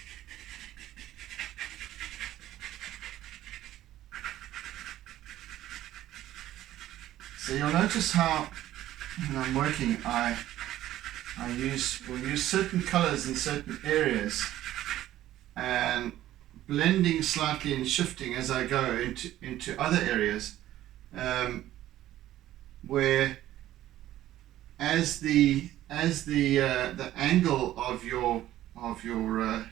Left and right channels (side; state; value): left; quieter; 13.7 dB